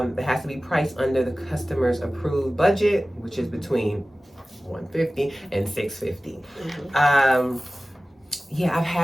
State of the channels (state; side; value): normal; both; correlation 0.97